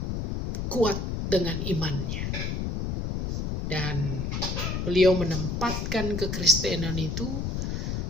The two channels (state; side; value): noise; left; rumble, 2 dB below the sound